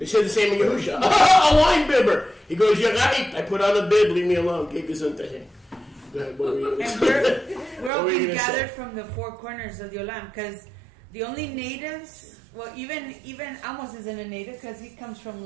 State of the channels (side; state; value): left; drops out; at 7.9 s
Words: He said the same in Yahusha. A wine bibber. He goes, Yagait, I put on a bib, leave me alone. Go ahead, what were you And say? we're all being gathered from the four corners of the Olam, because the only natives, well, even Amos isn't a native because he comes from